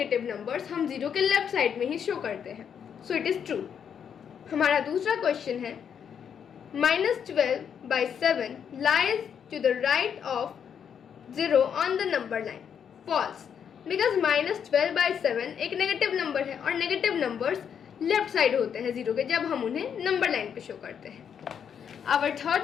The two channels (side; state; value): right; quieter; 7.8 dB